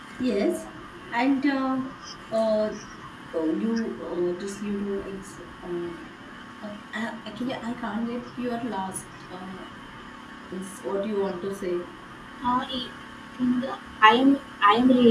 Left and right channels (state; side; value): identical; both; correlation 1.00